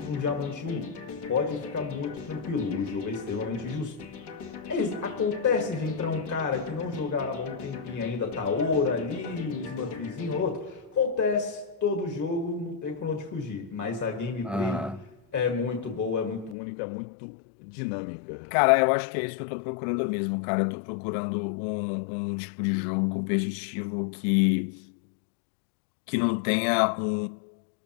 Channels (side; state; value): right; drops out; at 16.6 s